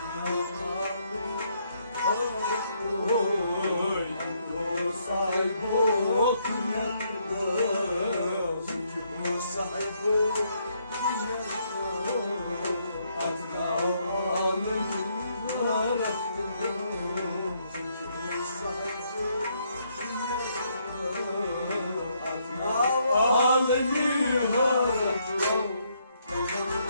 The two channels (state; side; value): inverted; both; correlation -0.73